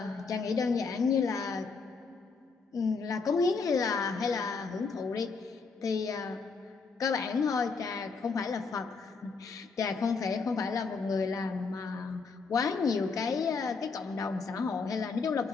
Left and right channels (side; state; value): right; quieter; 4.7 dB